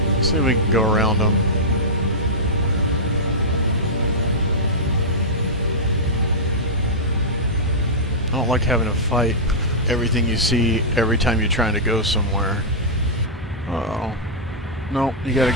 See if we can go around them. I don't like having to fight everything you see every time you're trying to go somewhere. Uh-oh. No, you gotta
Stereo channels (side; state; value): both; normal; correlation -0.12